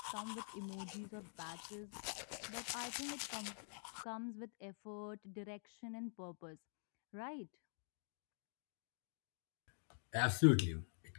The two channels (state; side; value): silent; right; digital silence